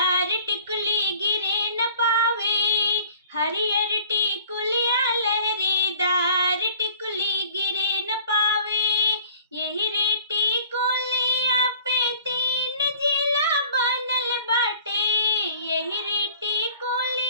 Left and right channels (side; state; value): both; inverted; correlation -0.48